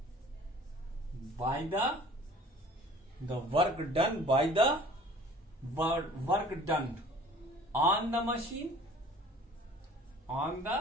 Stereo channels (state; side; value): normal; both; correlation 0.49